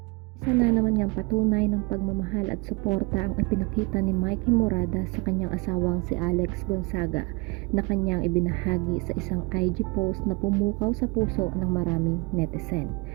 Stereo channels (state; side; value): quieter; left; 27.5 dB